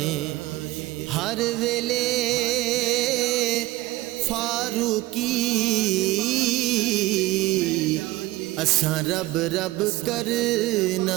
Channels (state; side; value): quieter; left; 18.6 dB